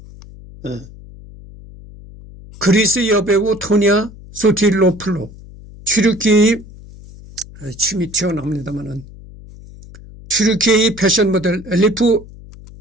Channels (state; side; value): noise; left; hum, 19 dB below the sound